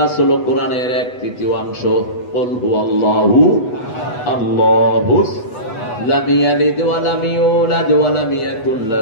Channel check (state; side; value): late; right; 8.1 ms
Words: হলো কোরআনের 1/3 কুল হুয়াল্লাহু আল্লাহু লাম ইয়ালিদ ওয়া লাম ইউলাদ ওয়া লাম ইয়াকুল